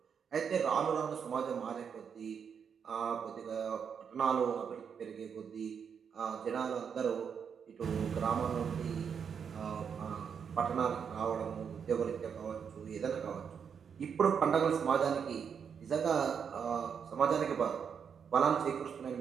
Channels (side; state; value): left; quieter; 7.0 dB